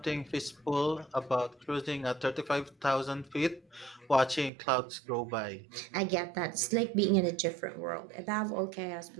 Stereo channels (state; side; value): drops out; left; at 4.5 s